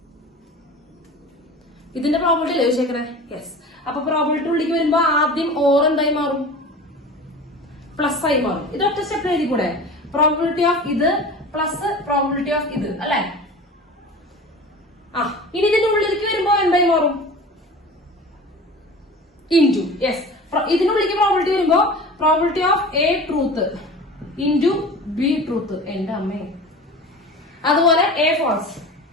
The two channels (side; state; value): both; normal; correlation 0.37